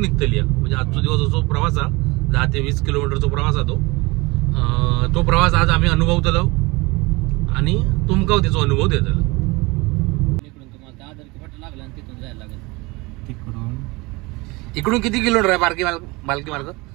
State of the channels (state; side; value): quieter; left; 24.4 dB